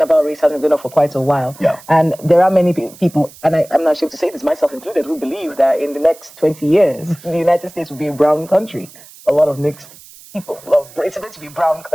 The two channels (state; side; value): noise; right; hiss, 21 dB below the sound